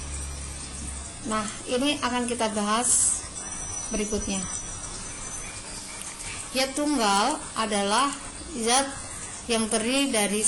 Nah, ini akan kita bahas berikutnya. Zat tunggal adalah zat yang terdiri dari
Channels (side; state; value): both; identical; correlation 1.00